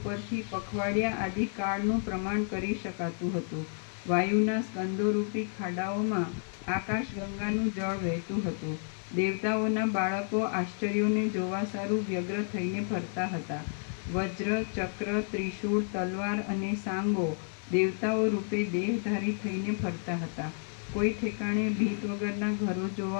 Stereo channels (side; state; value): right; silent; 57 dB below the other